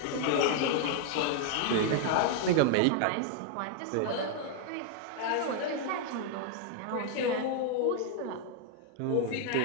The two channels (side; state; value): both; different; correlation 0.00